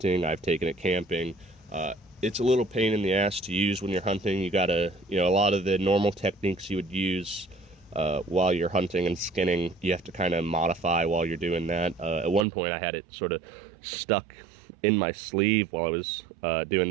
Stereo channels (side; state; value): left; drops out; at 12.5 s